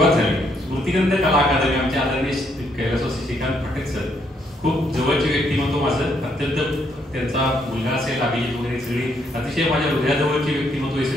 झाली. स्मृतिगंध कला अकादमी आमच्या आदरणीय कैलासवासी श्रीकांत पाटील सर खूप जवळची व्यक्तिमत्व माझं, अत्यंत त्यांचा मुलगा असेल अभिजित वगैरे सगळी अतिशय माझ्या हृदयाजवळची व्यक्तिमत्व आहे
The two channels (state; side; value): normal; both; correlation 0.72